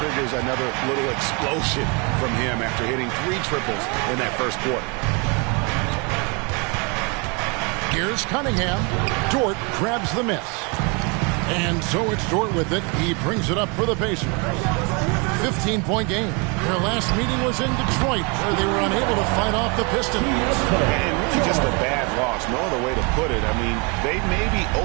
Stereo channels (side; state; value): left; quieter; 31.3 dB